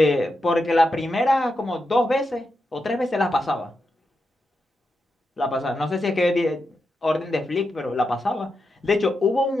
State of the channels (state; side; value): normal; both; correlation 0.87